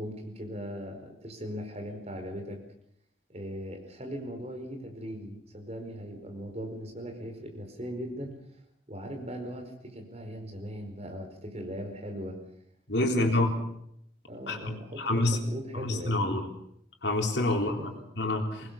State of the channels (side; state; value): both; normal; correlation 0.52